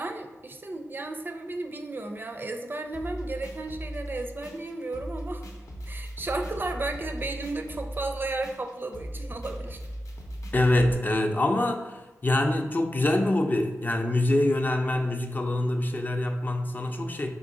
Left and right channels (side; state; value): both; normal; correlation 0.90